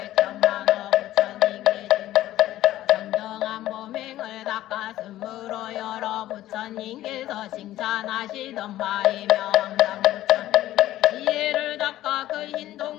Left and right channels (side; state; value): right; quieter; 14.5 dB